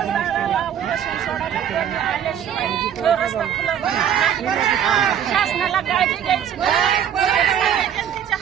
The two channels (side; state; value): left; quieter; 9.3 dB